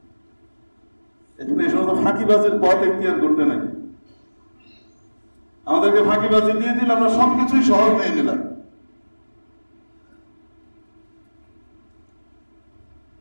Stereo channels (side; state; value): both; inverted; correlation -1.00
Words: এজন্য এই সমস্ত ফাঁকিবাজির পথ এখতিয়ার করতে নাই। আমাদেরকে ফাঁকিবাজি দিয়ে দিলে আমরা সবকিছুই সহজ নিয়ে নিলাম।